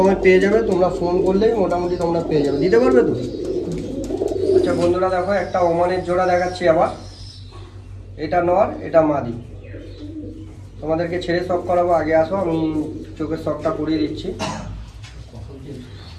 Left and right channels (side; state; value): both; identical; correlation 1.00